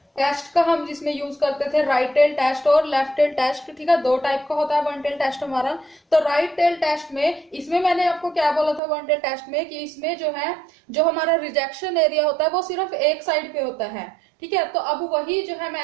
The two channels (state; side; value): drops out; left; at 8.8 s